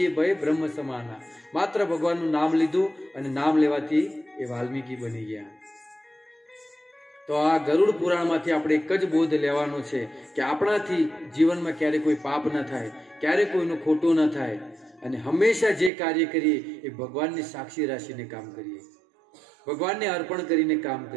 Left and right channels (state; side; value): drops out; left; at 15.9 s